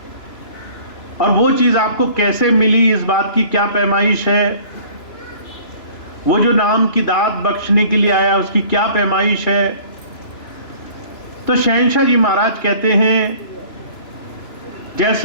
और वो चीज आपको कैसे मिली, इस बात की क्या पैमाइश है, वो जो नाम की दात बख्शने के लिए आया उसकी क्या पैमाइश है। तो शहंशाह जी महाराज कहते हैं,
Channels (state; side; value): late; right; 2.9 ms